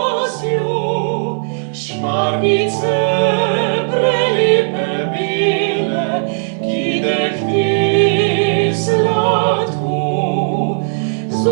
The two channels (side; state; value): left; silent; digital silence